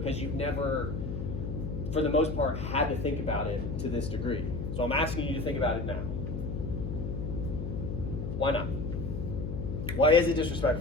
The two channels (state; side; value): noise; left; hum, 4 dB below the sound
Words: you've never, for the most part, had to think about it to this degree. So I'm asking you to think about it now. Why not? Why is it